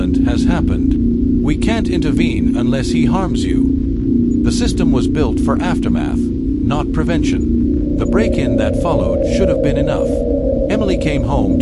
has happened. We can't intervene unless he harms you." The system was built for aftermath, not prevention. The break-in that followed should have been enough. Emily came home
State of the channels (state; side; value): identical; both; correlation 1.00